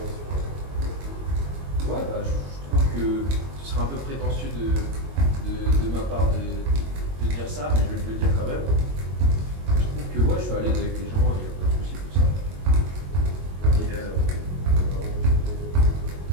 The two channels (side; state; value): left; late; 22 ms